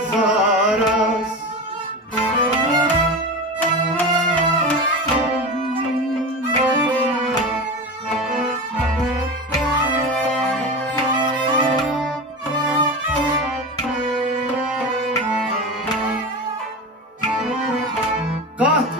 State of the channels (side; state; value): both; normal; correlation 0.26